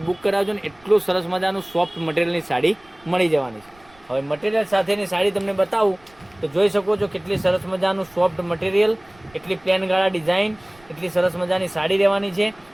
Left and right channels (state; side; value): noise; right; rumble, 29 dB below the sound